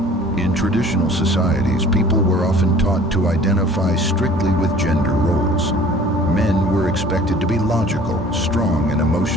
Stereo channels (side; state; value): both; normal; correlation 0.50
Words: In traditional societies, people were often taught to identify strictly with gender roles. Men were expected to be logical, strong, and